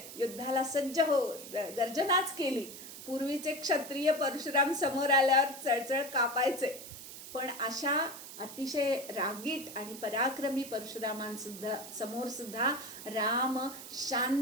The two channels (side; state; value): right; noise; hiss, 12 dB below the sound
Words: युद्धाला सज्ज हो गर्जनाच केली. पूर्वीचे क्षत्रिय परशुराम समोर आल्यावर चळचळ कापायचे, पण अशा अतिशय रागीट आणि पराक्रमी परशुरामांसुद्धा समोर सुद्धा राम